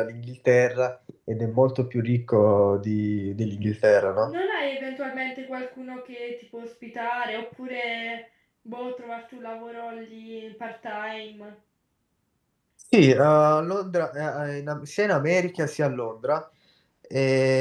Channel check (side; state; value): both; identical; correlation 1.00